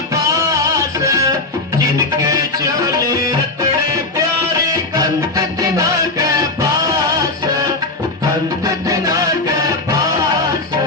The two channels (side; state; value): right; quieter; 3.0 dB